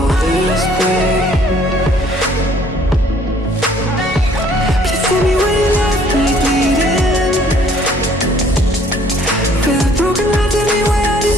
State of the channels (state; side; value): normal; both; correlation 0.59